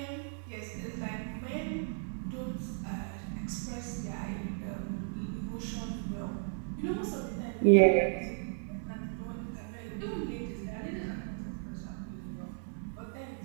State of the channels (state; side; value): silent; left; 54 dB below the other